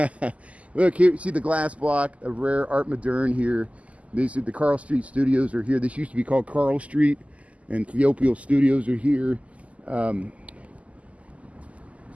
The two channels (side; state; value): left; late; 0.067 ms